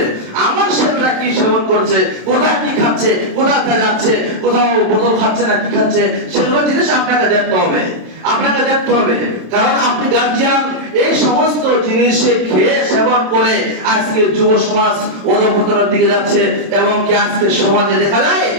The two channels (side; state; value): left; late; 27 ms